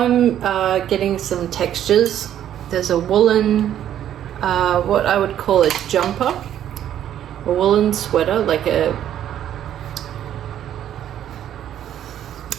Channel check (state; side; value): quieter; left; 10.8 dB